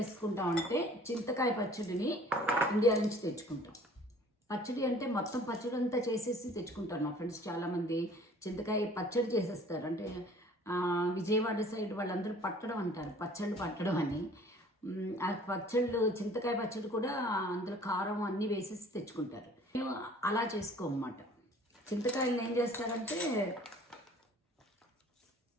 ఉంటే చింతకాయ పచ్చడిని ఇండియా నుంచి తెచ్చుకుంటాం. పచ్చడి అంటే మొత్తం పచ్చడి అంతా చేసేసి తెచ్చుకుంటారు. నా ఫ్రెండ్స్ చాలామంది చింతకాయ పచ్చడి చేసేస్తారు. అంటే విజయవాడ సైడ్ వాళ్ళందరూ పట్టడం అంటారు, పచ్చళ్ళు పట్టడం అని. ఆ పచ్చళ్ళు, చింతకాయ పచ్చడి కూడా అందులో కారం అన్నీ వేసేసి తెచ్చుకుంటారు. మేము అలా చేసుకోమన్నమాట. చింతకాయలను ఏం చేస్తారంటే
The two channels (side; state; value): both; normal; correlation 0.51